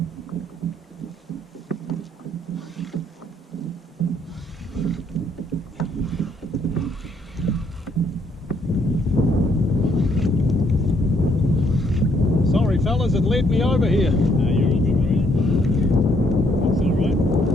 Sorry fellas, it led me over here. No, you're all good, right? That's all right.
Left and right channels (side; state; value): both; normal; correlation 0.70